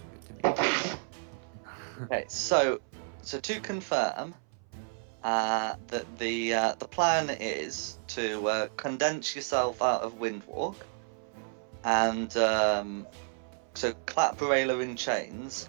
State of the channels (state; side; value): silent; left; 57 dB below the other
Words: Good to me. Okay, so to confirm, that the plan is to condense yourself out of Windwalk, and so clap Rayla in chains,